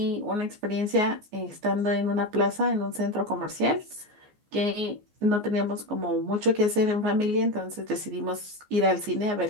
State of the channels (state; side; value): late; left; 14 ms